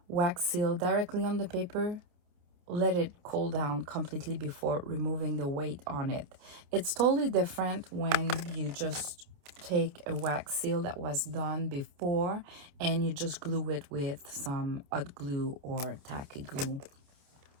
wax seal directly on the paper, let it cool down completely before removing the weight on it. It's totally different when you just take a wax seal that was done before and you just glue it with some hot glue or tacky glue.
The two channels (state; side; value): late; left; 28 ms